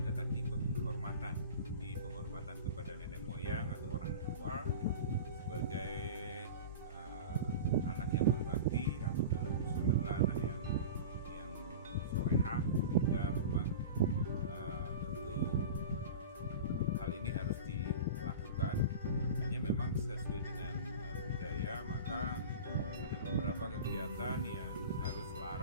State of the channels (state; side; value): inverted; both; correlation -0.31